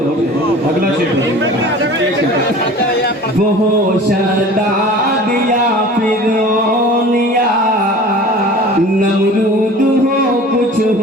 और अगला शेर वो हो शदाद या फिरौन या नमरूद हो कुछ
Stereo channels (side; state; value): both; normal; correlation 0.42